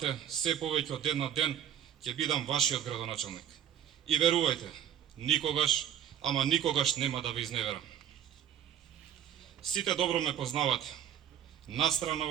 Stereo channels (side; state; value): left; quieter; 9.7 dB